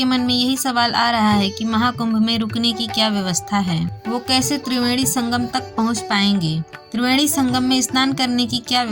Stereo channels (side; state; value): both; identical; correlation 1.00